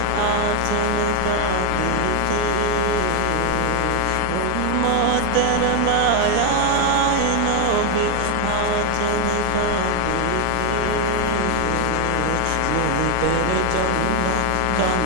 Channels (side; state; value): both; different; correlation 0.00